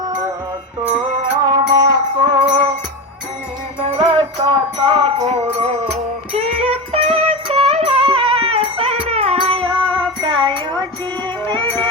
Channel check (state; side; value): normal; both; correlation 0.20